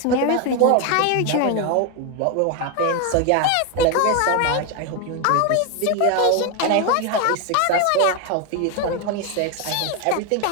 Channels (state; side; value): different; both; correlation 0.01